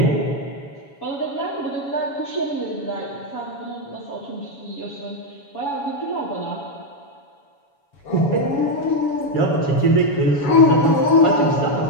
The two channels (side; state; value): right; late; 7.1 ms